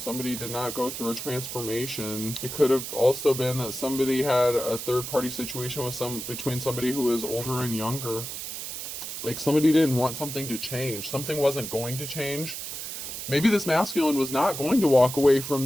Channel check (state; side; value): noise; right; hiss, 7 dB below the sound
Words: did not go through a transformation. It could have also been that somebody had a third-party situation with between somebody who is older and younger. Like somebody didn't want something to change. Something wasn't going to change. Maybe this masculine was not going to walk away from